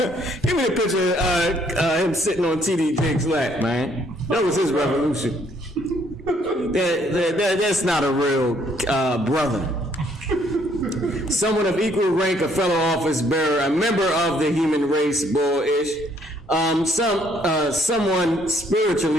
Give me a picture of him sitting on T.D. Jake's lap, man. That was his revolution. That's not a real brother. Someone of equal rank, a fellow office bearer, a member of the human race, bullish. Someone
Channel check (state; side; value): normal; both; correlation 0.66